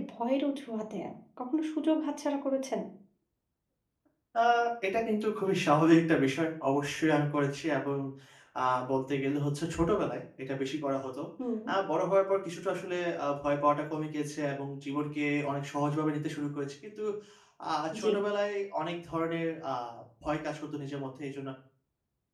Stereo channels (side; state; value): both; identical; correlation 1.00